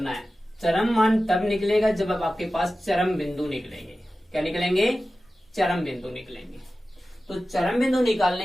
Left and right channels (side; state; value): both; normal; correlation 0.95